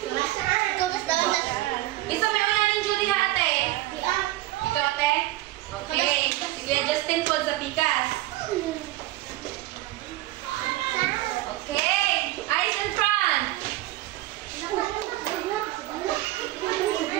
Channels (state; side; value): quieter; left; 17.1 dB